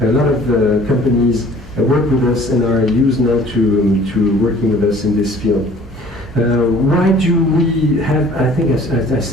lot of companies work with us and are used now to working with us in this field. Why do we have, I think I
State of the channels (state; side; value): normal; both; correlation 0.51